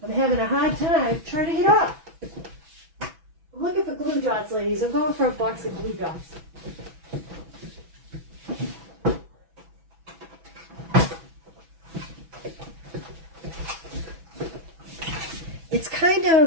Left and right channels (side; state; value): left; late; 6.1 ms